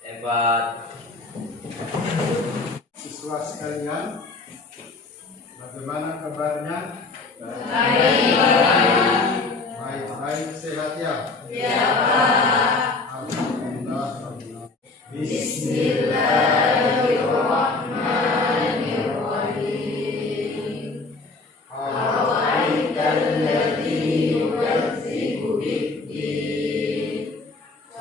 4. Siswa sekalian, bagaimana kabarnya? Baik, sehat ya? Ya Pak. Alhamdulillah. Bismillahirrahmanirrahim. Awaitalladzi yukadzibu bid-din,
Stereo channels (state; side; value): quieter; right; 3.7 dB